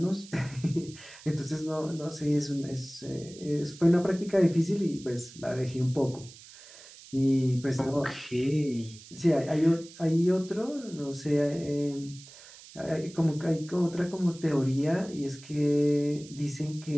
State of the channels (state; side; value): noise; right; hiss, 19 dB below the sound